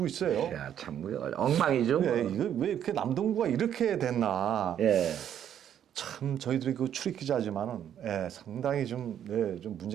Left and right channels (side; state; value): left; quieter; 9.8 dB